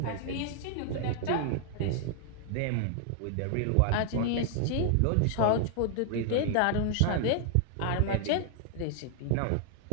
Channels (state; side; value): different; both; correlation -0.01